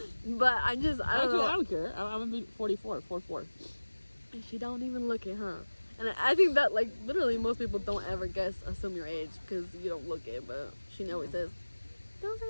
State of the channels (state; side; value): inverted; both; correlation -1.00